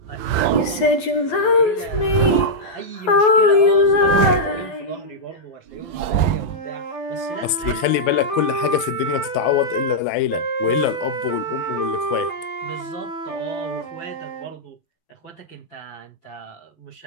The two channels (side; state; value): right; late; 12 ms